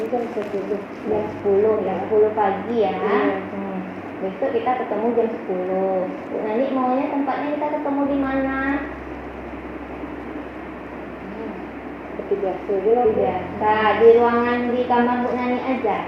kan 10. Jam 10, ya 10 pagi ya. Iya. Besok kita ketemu jam 10. Bu Nani maunya tempatnya kita ketemu di mana? Seperti biasa aja lah. Bu. Biasa, di ruangan di kamar Bu Nani aja.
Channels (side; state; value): both; identical; correlation 1.00